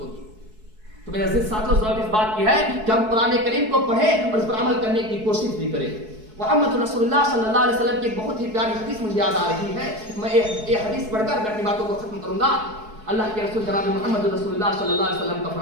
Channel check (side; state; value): left; late; 4.7 ms